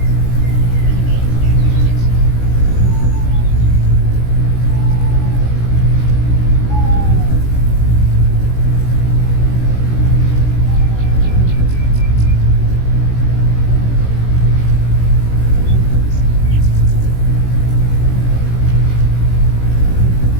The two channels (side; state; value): right; late; 17 ms